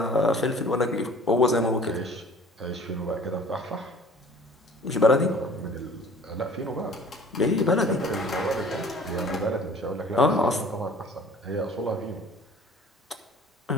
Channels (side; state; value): both; normal; correlation 0.49